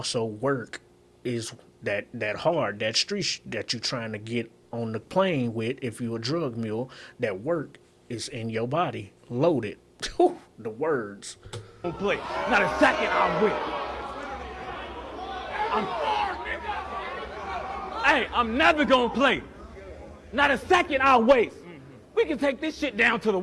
work is that hard, that street that you trying to get on the plane with. If you a drug mule, that work is in your body, loaded. The words. Don't play. Not a second I'll win. I'm never gonna play. Not a second I'll waste. We can take this shit down to the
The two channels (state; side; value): identical; both; correlation 1.00